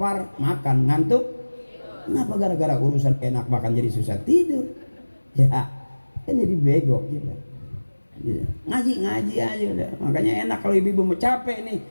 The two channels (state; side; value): inverted; both; correlation -1.00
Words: makan, ngantuk. Kenapa gara-gara urusan enak makan jadi susah tidur? Ya, kan jadi bego gitu. Ngaji aja udah. Makanya enak kalau ibu-ibu mau capek nih,